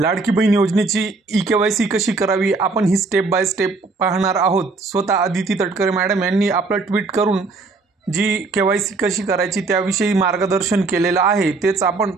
बहीण योजनेची ई-के-वाय-सी कशी करावी आपण ही स्टेप बाय स्टेप पाहणार आहोत। स्वतः आदिती तटकरे मॅडम यांनी आपलं ट्विट करून जी के-वाय-सी कशी करायची त्याविषयी मार्गदर्शन केलेलं आहे, तेच आपण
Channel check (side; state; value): left; quieter; 3.9 dB